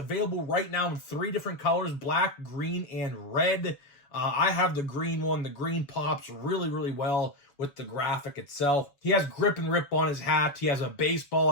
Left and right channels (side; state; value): right; late; 7.0 ms